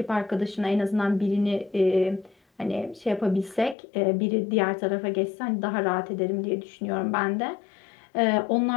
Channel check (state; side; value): drops out; right; at 3.8 s